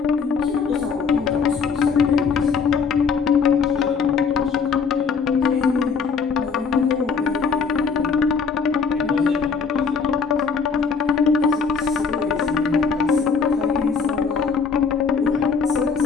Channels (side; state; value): right; quieter; 5.5 dB